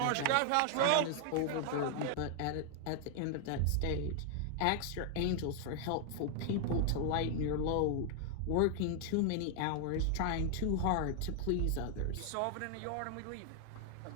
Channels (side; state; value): both; different; correlation 0.00